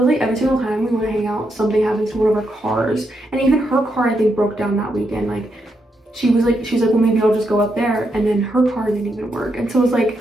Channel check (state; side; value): normal; both; correlation 0.81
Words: like every single time we want to hang out, something happens to one of our cars. And even her car, I think, broke down that weekend. Like, she's like, well, maybe I'll just go up there. And then her car didn't even work. And so it was